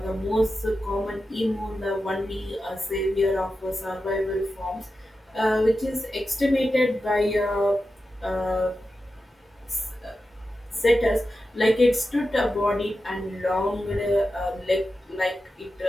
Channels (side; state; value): both; normal; correlation 0.91